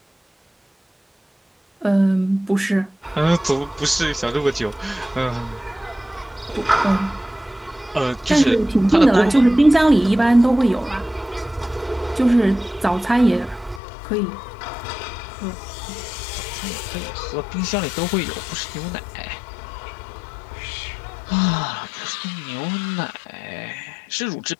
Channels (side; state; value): right; drops out; at 13.8 s